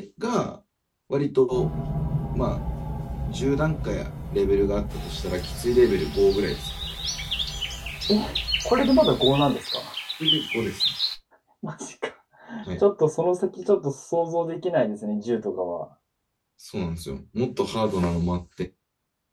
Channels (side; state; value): both; identical; correlation 1.00